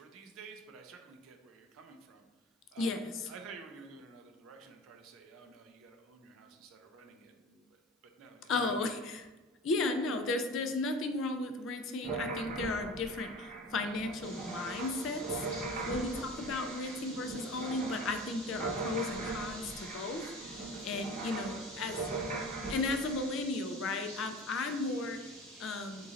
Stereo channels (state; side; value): normal; both; correlation 0.37